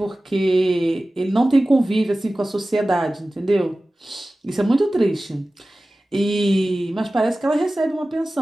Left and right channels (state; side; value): normal; both; correlation 0.96